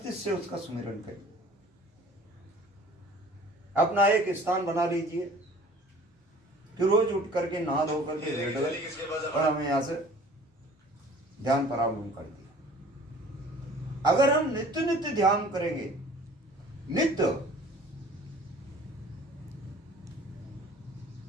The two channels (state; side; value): normal; both; correlation 0.49